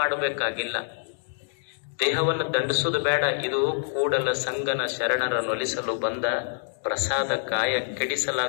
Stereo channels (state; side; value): silent; right; digital silence